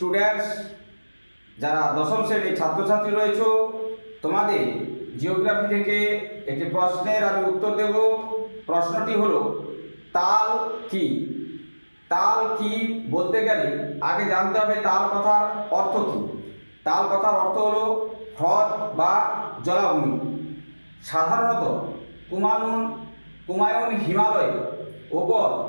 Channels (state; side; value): inverted; both; correlation -1.00